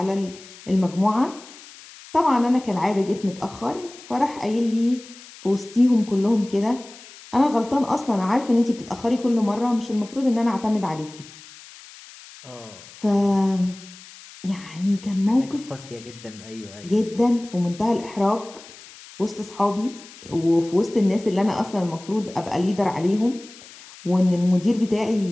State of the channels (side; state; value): left; noise; hiss, 19 dB below the sound